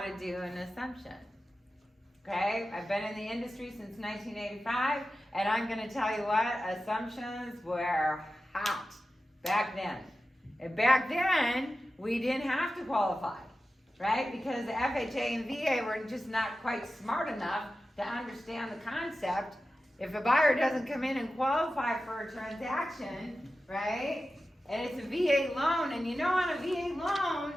to do an assumption. Okay? I've been in the industry since 1985, and I'm going to tell you what, assumptions were hot back then. And back then, we didn't have to qualify, right? Because the FHA and VA were just not quite smart enough to understand the concept. If a buyer doesn't come in and qualify for a transaction, right, and it's a VA loan, and on a VA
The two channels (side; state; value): both; normal; correlation 0.93